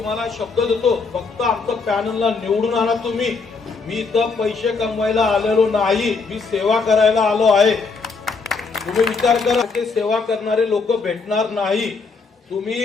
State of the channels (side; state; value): right; quieter; 4.5 dB